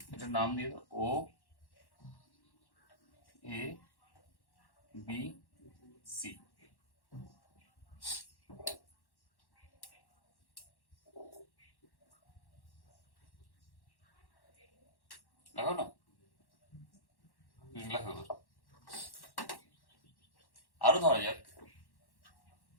এটার নাম দিয়ে দাও ও এ বি সি। লাগাও না, লাগাও। আরো ধরা যাক,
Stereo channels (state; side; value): late; right; 1.1 ms